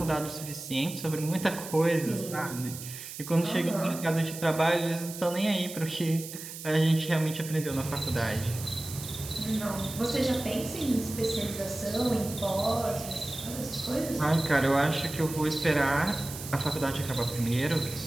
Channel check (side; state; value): right; noise; hiss, 11 dB below the sound